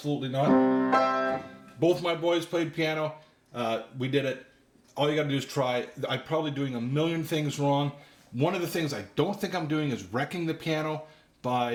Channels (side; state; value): both; identical; correlation 1.00